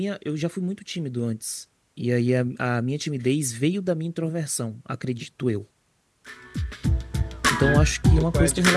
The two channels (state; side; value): identical; both; correlation 1.00